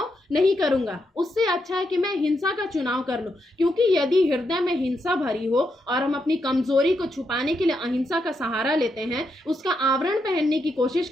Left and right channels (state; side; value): normal; both; correlation 0.82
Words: नहीं करूंगा। उससे अच्छा है कि मैं हिंसा का चुनाव कर लूं, क्योंकि यदि हृदय में हिंसा भरी हो और हम अपनी कमजोरी को छुपाने के लिए अहिंसा का सहारा लेते हैं, उसका आवरण पहनने की कोशिश